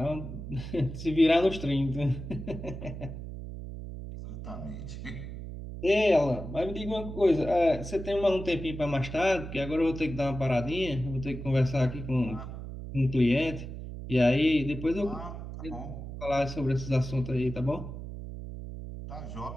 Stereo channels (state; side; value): noise; right; hum, 9 dB below the sound